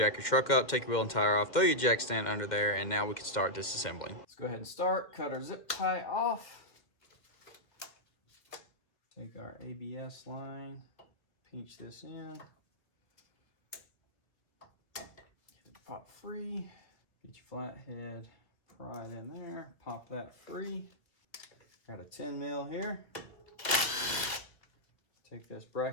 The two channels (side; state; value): right; late; 1.6 ms